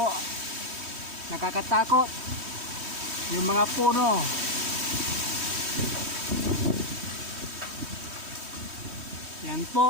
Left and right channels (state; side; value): late; left; 3.1 ms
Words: nakakatakot yung mga puno. Yan